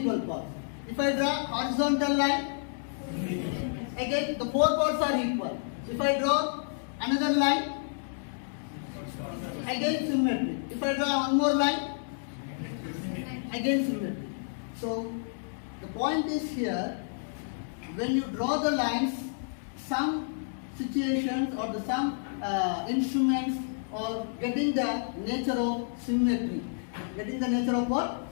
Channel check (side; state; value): right; silent; digital silence